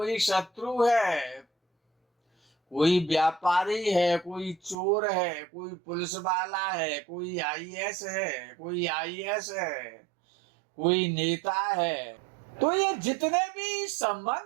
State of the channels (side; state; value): left; drops out; at 4.8 s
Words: शत्रु है, कोई व्यापारी है, कोई चोर है, कोई पुलिस वाला है, कोई आईएएस है, कोई आईएएस है, कोई नेता है। तो ये जितने भी